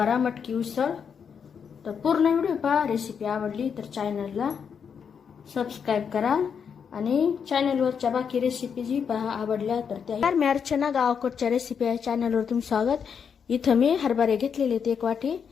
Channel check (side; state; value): right; quieter; 6.9 dB